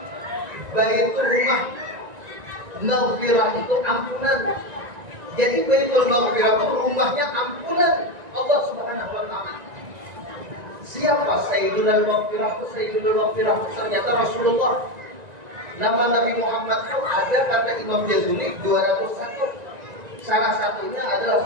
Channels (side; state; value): left; late; 1.9 ms